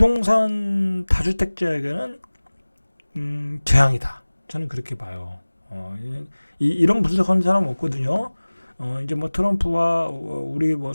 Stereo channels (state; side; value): inverted; both; correlation -1.00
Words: 다주택자에게는 재앙이다. 저는 그렇게 봐요. 이런 분석하는 사람 없거든요. 이제 뭐 트럼프와 우리 뭐